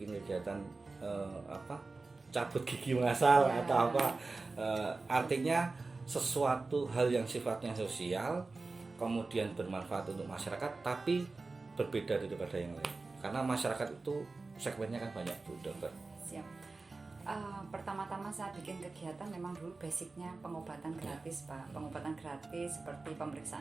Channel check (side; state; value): left; quieter; 3.7 dB